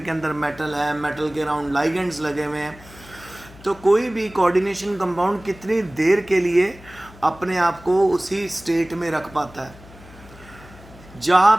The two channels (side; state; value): left; noise; hum, 21 dB below the sound